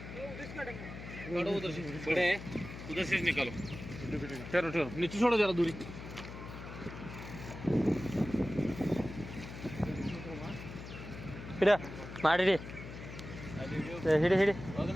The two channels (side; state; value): left; noise; hum, 11 dB below the sound